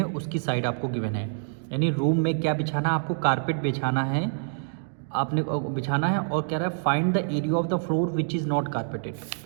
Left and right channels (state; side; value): silent; left; digital silence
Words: उसकी साइड आपको गिवन है। यानी रूम में क्या बिछाना, आपको कारपेट बिछाना है, आपने बिछाना है और कह रहा है find the area of the floor which is not carpeted.